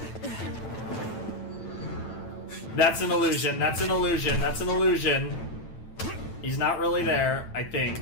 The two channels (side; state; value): right; late; 9.0 ms